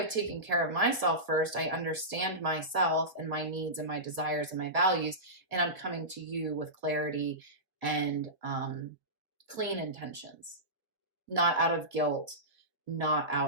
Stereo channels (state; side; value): late; left; 2.0 ms